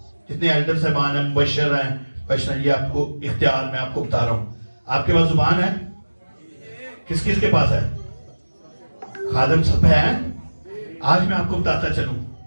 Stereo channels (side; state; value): both; inverted; correlation -1.00